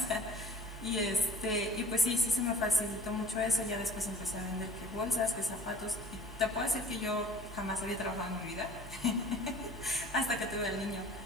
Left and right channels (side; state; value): both; normal; correlation 0.47